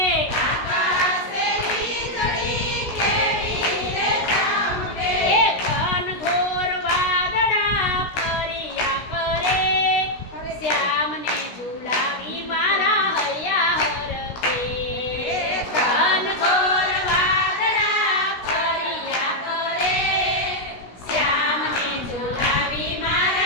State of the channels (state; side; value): late; right; 16 ms